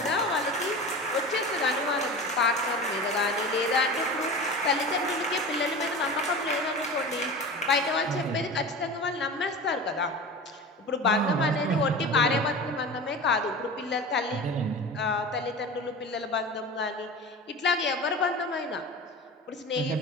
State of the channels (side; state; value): both; normal; correlation 0.32